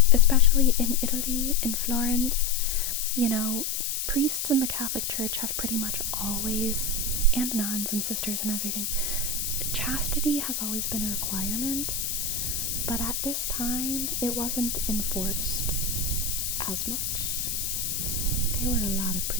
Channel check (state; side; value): noise; left; hiss, 1 dB below the sound